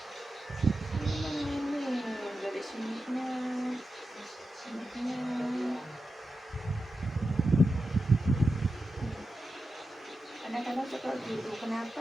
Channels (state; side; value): normal; both; correlation 0.90